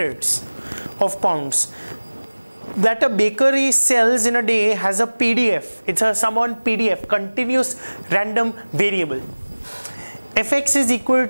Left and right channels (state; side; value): inverted; both; correlation -1.00